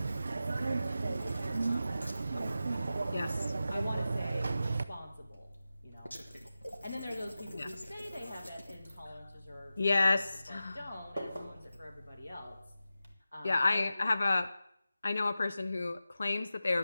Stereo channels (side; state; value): both; inverted; correlation -0.93